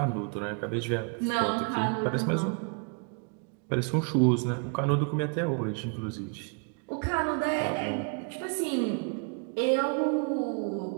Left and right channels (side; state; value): left; quieter; 38.5 dB